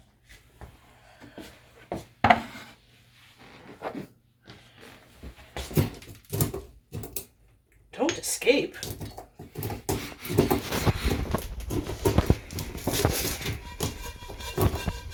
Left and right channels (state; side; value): identical; both; correlation 1.00